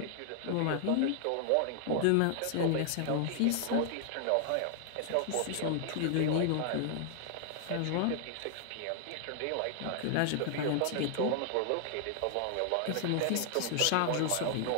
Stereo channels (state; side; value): different; both; correlation 0.00